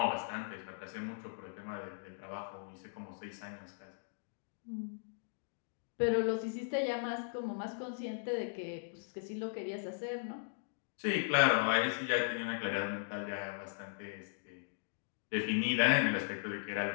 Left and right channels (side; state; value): right; silent; digital silence